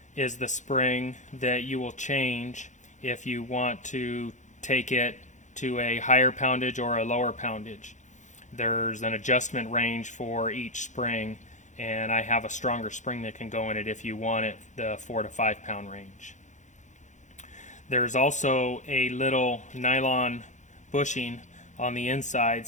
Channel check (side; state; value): right; late; 0.35 ms